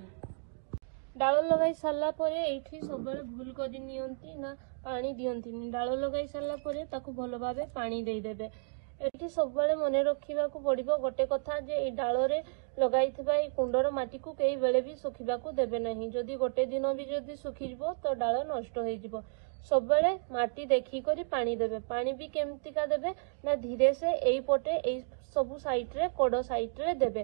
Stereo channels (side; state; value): left; silent; digital silence